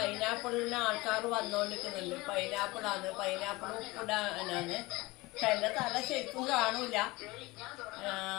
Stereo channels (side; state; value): right; quieter; 21.7 dB